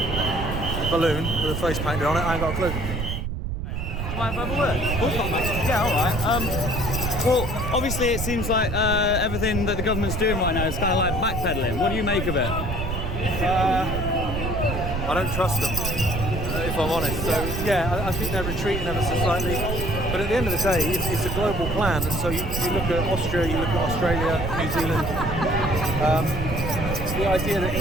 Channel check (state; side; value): noise; right; rumble, 4 dB below the sound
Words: balloon with a face painted on it. I ain't got a clue. Mind if I have a word? Yeah, alright. Well, obviously it seems like everything that the government's doing right now is kind of like backpedaling. What do you make of it? I don't trust them, if I'm honest. So yeah, I think they're retreating ever so slightly. But at the end of the day, it's a global plan. And so you look at Austria, you look at Australia, New Zealand. The idea that